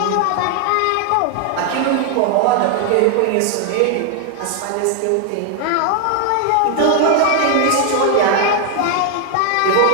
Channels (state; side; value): different; both; correlation 0.00